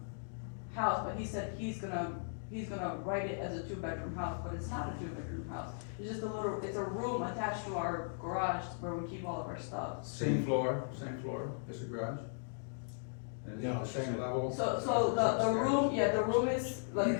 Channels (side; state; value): right; silent; digital silence